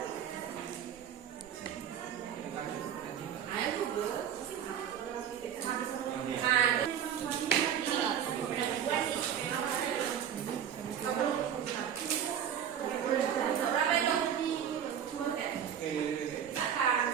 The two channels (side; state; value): left; quieter; 9.0 dB